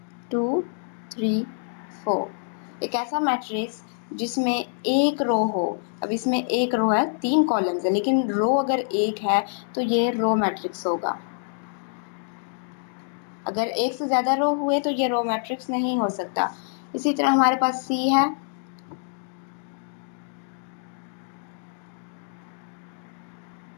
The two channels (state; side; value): silent; right; digital silence